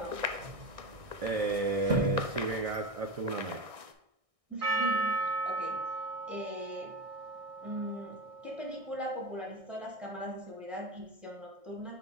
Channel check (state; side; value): late; left; 1.6 ms